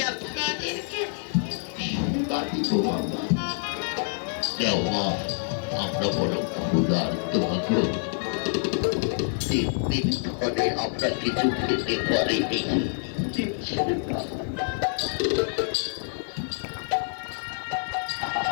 আপনাদেরকে সেবা দিব বাবা। দেওয়া আমরা বড় ক্ষুধার্ত গো। 3 দিন ধরে আমরা কিছু খেতে পারিনি। দিচ্ছেন না।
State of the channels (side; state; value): right; silent; digital silence